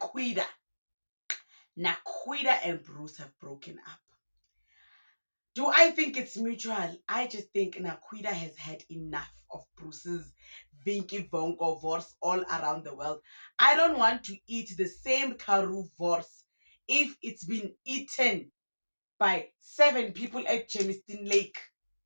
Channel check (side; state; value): both; inverted; correlation -1.00